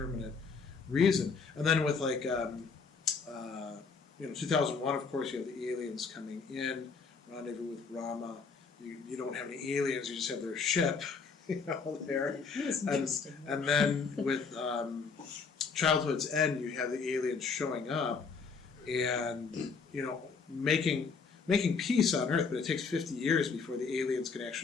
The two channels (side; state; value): right; quieter; 5.1 dB